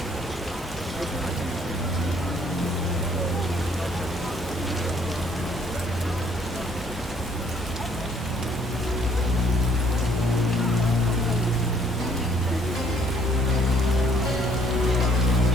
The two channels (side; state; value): both; normal; correlation 0.63